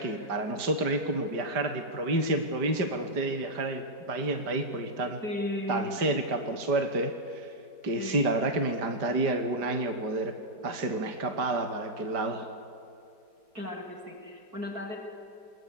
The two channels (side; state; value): left; late; 5.0 ms